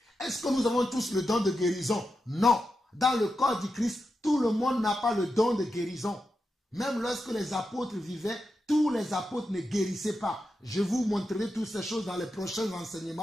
Est-ce que nous avons tous le don de guérison? Non. Dans le corps du Christ, tout le monde n'a pas le don de guérison. Même lorsque les apôtres vivaient, tous les apôtres ne guérissaient pas. Je vous montrerai toutes ces choses dans les prochains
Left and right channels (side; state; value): both; normal; correlation 0.88